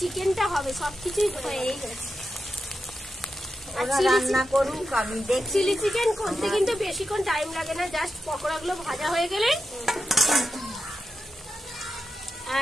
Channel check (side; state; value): both; normal; correlation 0.89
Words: হবে, সবকিছুই হয়েই গেছে। রান্না করুক, আমি দেখছি। চিলি চিকেন করতে কিন্তু বেশিক্ষণ টাইম লাগে না, জাস্ট পকোড়াগুলো ভাজা হয়ে গেলে।